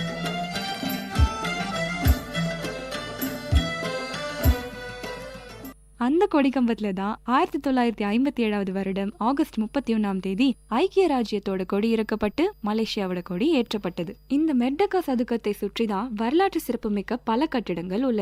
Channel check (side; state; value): both; identical; correlation 1.00